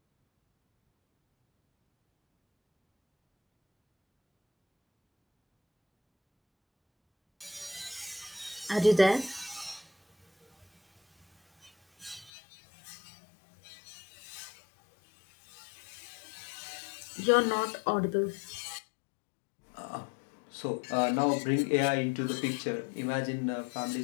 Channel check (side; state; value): right; drops out; at 12.3 s